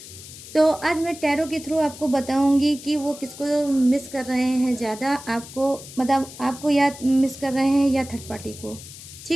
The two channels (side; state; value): left; noise; hiss, 15 dB below the sound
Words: तो आज मैं टैरो के थ्रू आपको बताऊंगी कि वो किसको मिस कर रहे हैं ज़्यादा, आपको मतलब आपको या मिस कर रहे हैं या थर्ड पार्टी को।